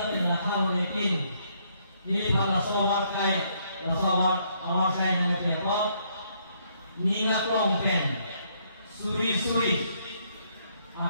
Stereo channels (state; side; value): inverted; both; correlation -0.71